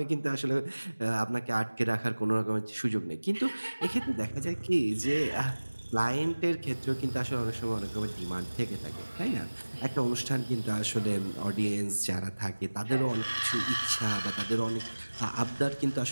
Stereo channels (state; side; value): inverted; both; correlation -1.00